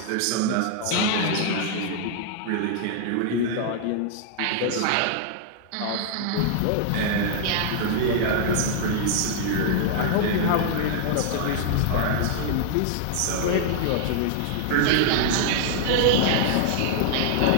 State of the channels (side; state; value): both; different; correlation -0.01